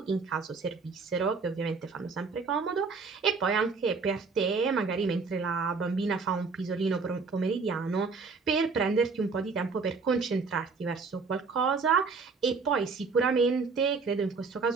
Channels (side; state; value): left; quieter; 4.6 dB